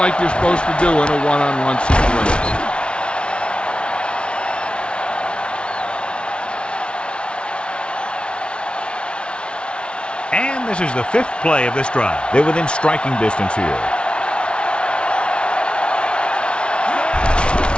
you're supposed to do in a one-on-one situation. And this is the 5th play of this drive. They're within striking distance here.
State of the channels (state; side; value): late; right; 0.058 ms